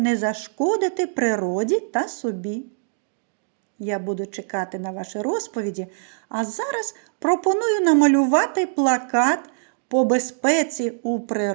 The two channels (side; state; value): left; silent; digital silence